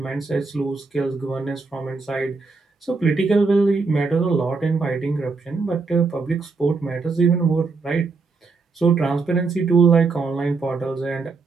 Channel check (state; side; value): quieter; left; 4.3 dB